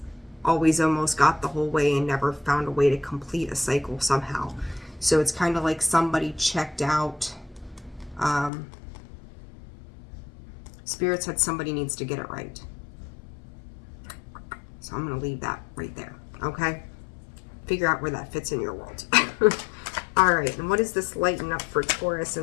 always almost got the whole way and never found a way to complete a cycle somehow. So it's kind of like somebody checked out. Spirit said somebody needs to get it right. So I'm going to leave that right there, okay? Figure out where that fits in your world. All right, and what does this lighten up for Taurus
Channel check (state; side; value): drops out; right; at 8.5 s